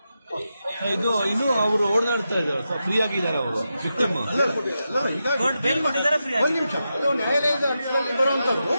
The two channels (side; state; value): both; inverted; correlation -0.89